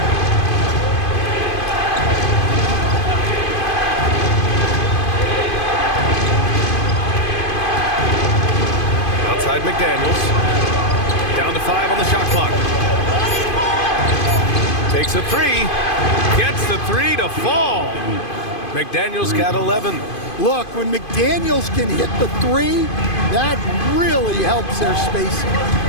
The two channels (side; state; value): right; late; 2.5 ms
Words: Outside McDaniels. Down to 5 on the shot clock. Takes a 3. Gets the 3 to fall. McDaniels got 11. Look, when McDaniels can hit the 3, that really helps their spacing.